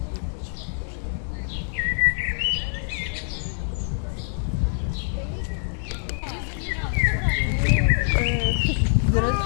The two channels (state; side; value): silent; right; 62 dB below the other